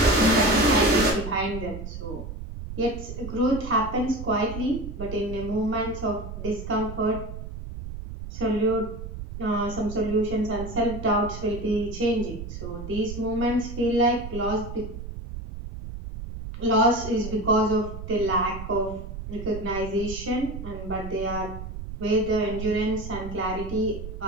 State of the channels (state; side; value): noise; right; rumble, 9 dB below the sound